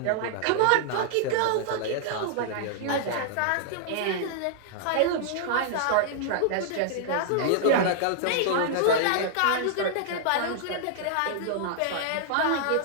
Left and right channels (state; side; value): different; both; correlation -0.01